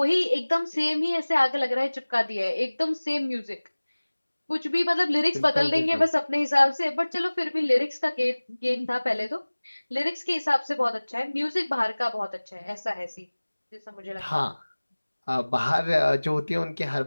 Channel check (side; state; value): both; inverted; correlation -1.00